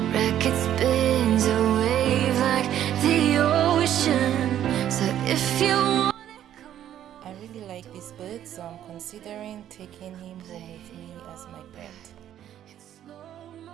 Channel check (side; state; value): left; quieter; 11.1 dB